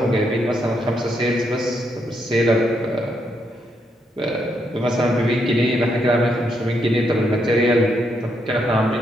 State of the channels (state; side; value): normal; both; correlation 0.78